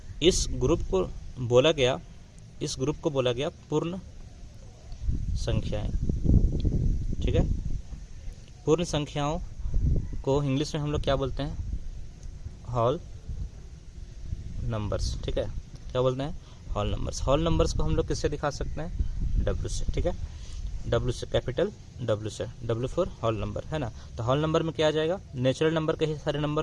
इस ग्रुप को बोला गया पूर्ण संख्याएं, ठीक है। पूर्ण संख्याओं को इंग्लिश में हम लोग क्या बोलते हैं? होल नंबर्स, ठीक है। क्या बोलते हैं? Whole numbers. होल नंबर्स को हम लोग किससे दिखा सकते हैं? W से, ठीक है। W से, कैपिटल W से। W फॉर होल नंबर, है ना। तो होल नंबर में क्या आ जाएगा? नेचुरल नंबर के ही सारे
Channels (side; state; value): both; identical; correlation 1.00